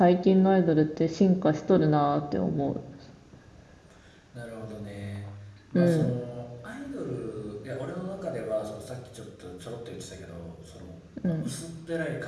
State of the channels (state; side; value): identical; both; correlation 1.00